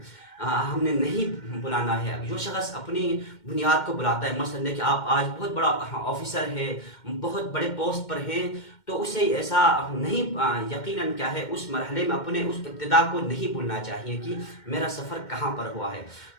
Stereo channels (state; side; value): late; right; 2.1 ms